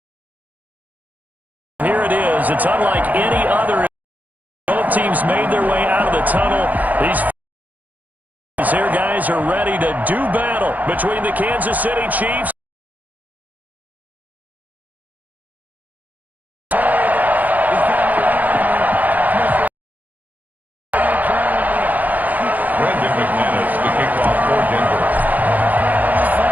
Here it is. It's unlike any other. Both teams made their way out of the tunnel. These here guys are ready to do battle between the Kansas City Chiefs.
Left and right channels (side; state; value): left; late; 0.080 ms